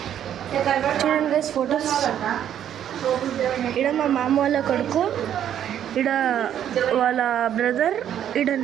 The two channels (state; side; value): quieter; left; 10.1 dB